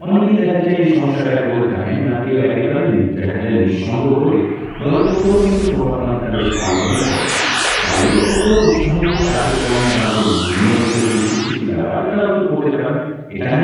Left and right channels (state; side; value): identical; both; correlation 1.00